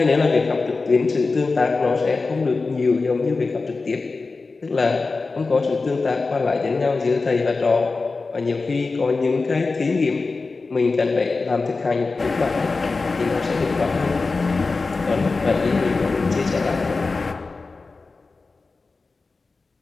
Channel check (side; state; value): right; quieter; 3.9 dB